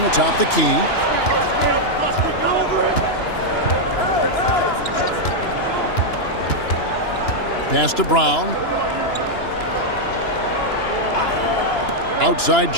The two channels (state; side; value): late; right; 2.9 ms